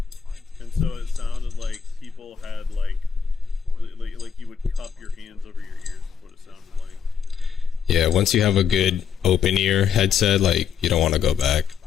And so it sounded like people had like you would cup your hands over your ears, what it sounded like. Yeah, once you have a good open ear headset, like, you don't want to go back.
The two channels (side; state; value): right; quieter; 7.1 dB